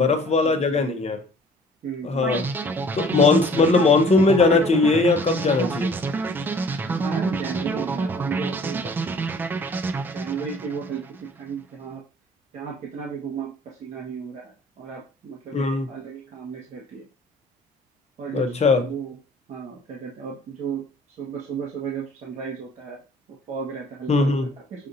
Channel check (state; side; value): normal; both; correlation 0.53